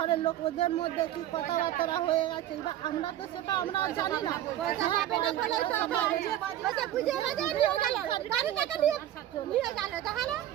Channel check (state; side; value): quieter; left; 12.5 dB